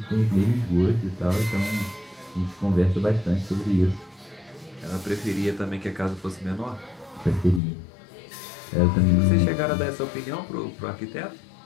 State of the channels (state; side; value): drops out; right; at 7.6 s